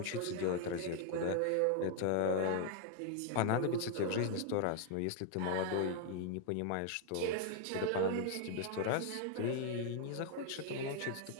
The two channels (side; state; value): both; different; correlation 0.00